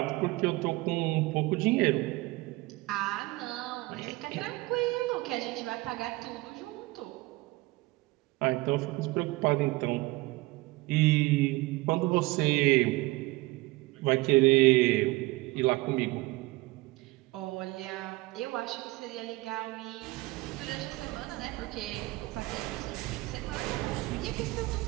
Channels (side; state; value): left; quieter; 21.3 dB